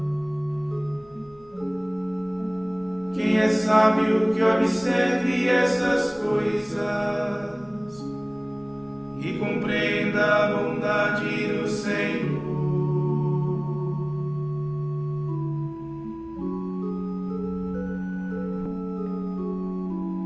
Quem é sábio que observe essas coisas e compreenda a bondade do Senhor.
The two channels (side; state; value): left; noise; hum, 29 dB below the sound